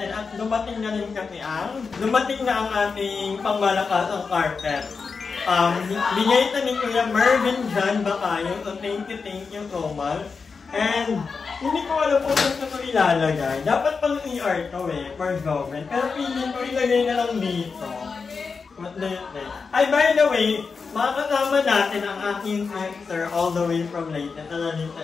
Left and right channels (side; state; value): right; quieter; 5.0 dB